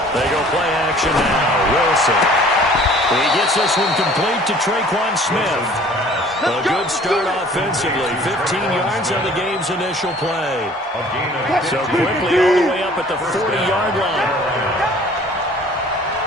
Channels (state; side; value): normal; both; correlation 0.51